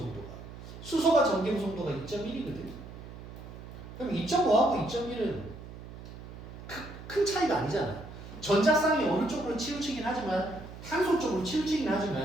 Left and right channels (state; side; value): noise; right; hum, 13 dB below the sound